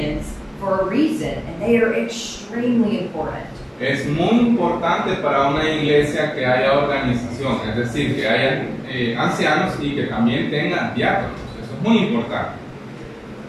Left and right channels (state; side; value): identical; both; correlation 1.00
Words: for a reason, and they are extremely important. Es muy importante para una iglesia que haya organización, es decir, que haya ancianos y que también tengan diáconos. Eso es muy importante.